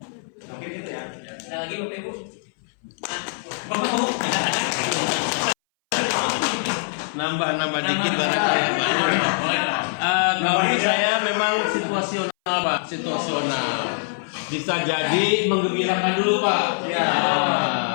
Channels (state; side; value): silent; right; 61 dB below the other